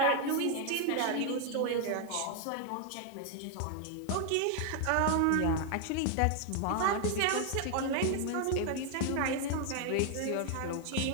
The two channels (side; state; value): both; different; correlation 0.00